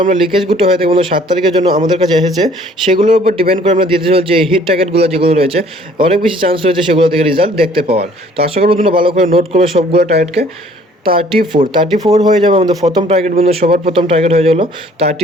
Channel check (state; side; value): normal; both; correlation 0.56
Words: আমরা লিকেজগুলো হয়ে থাকে বন্ধু 7 তারিখের জন্য আমাদের কাছে এসেছে, সেগুলোর উপর ডিপেন্ড করে আমরা দিতে চলছি এই হিট টার্গেটগুলো যেগুলো রয়েছে অনেক বেশি চান্স রয়েছে সেগুলো থেকে রেজাল্ট দেখতে পাওয়ার। তো আশা করবো তোমরা ভালো করে নোট করবে সবগুলো টার্গেটকে। 34 হয়ে যাবে আমাদের প্রথম টার্গেট বন্ধু, সবার প্রথম টার্গেট হয়ে গেলো